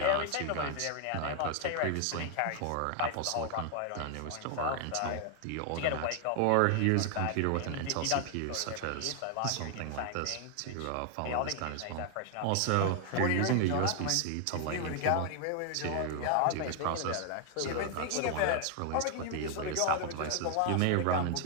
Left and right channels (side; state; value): both; different; correlation 0.00